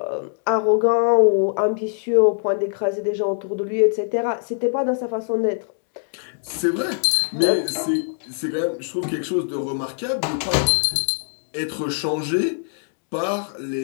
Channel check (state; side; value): silent; right; digital silence